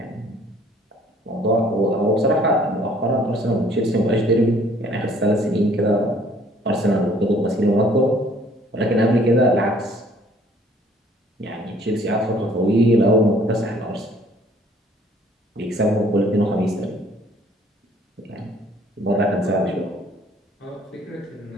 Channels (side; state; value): both; normal; correlation 0.58